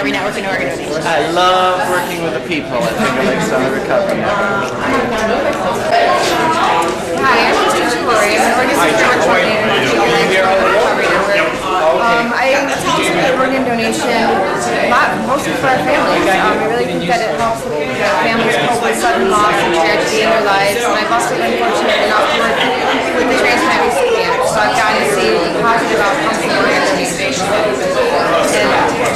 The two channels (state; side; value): identical; both; correlation 1.00